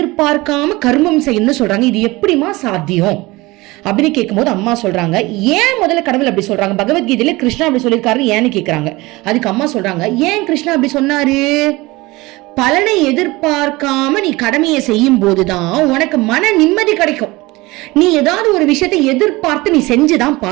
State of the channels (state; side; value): quieter; left; 21.5 dB